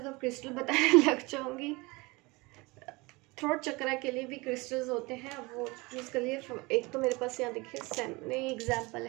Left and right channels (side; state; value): left; quieter; 24.4 dB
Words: क्रिस्टल बताने लग जाऊंगी। थ्रोट चक्रा के लिए भी क्रिस्टल्स होते हैं, अब वो यूज़ कर लिए। एक तो मेरे पास यहाँ देखिए सामने एग्जाम्पल